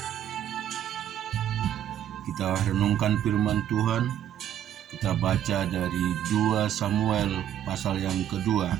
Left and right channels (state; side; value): quieter; left; 10.7 dB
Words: Kita renungkan firman Tuhan. Kita baca dari 2 Samuel pasal yang kedua.